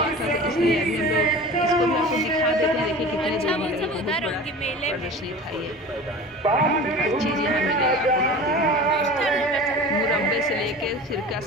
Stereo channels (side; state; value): both; normal; correlation 0.37